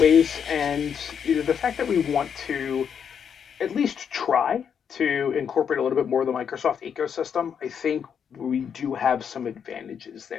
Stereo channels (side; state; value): right; quieter; 7.5 dB